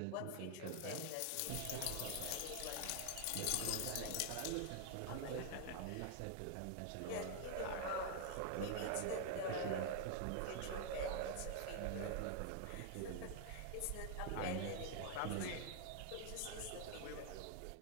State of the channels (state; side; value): different; both; correlation 0.00